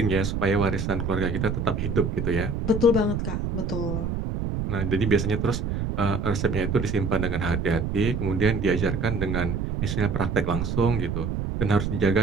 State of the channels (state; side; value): noise; right; rumble, 2 dB below the sound